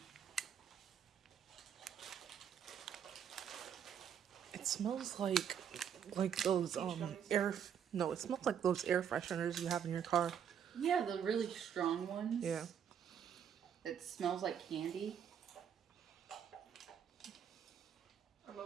It smells like those gummies. it smells like those air fresheners you have in your car. Yeah, the really strong ones. Yeah. It smells like candy. I'm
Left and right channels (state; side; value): quieter; left; 8.3 dB